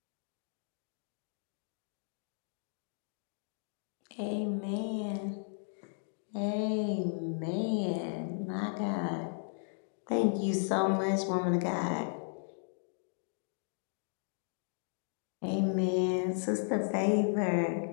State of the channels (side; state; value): right; silent; digital silence